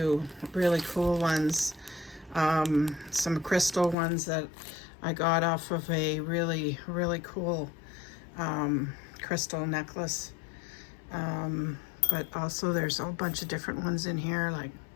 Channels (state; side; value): drops out; right; at 4.0 s